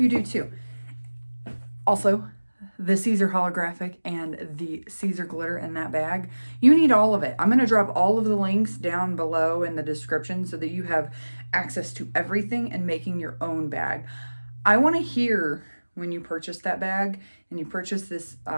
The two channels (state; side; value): inverted; both; correlation -1.00